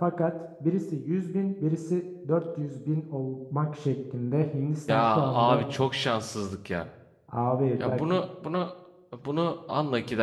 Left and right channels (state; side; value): identical; both; correlation 1.00